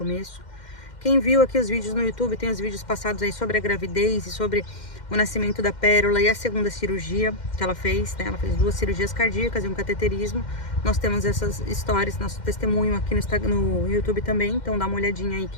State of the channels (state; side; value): late; right; 2.1 ms